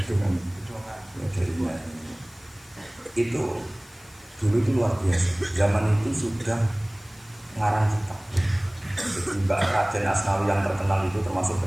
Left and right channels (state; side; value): noise; left; hiss, 25 dB below the sound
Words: kan jadinya itu dulu itu luar biasa. Zaman itu sudah ngarang kitab. Jadi Mbak Raden Asnawi yang terkenal itu termasuk